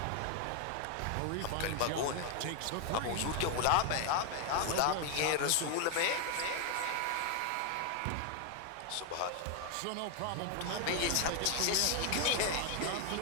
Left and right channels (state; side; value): different; both; correlation 0.01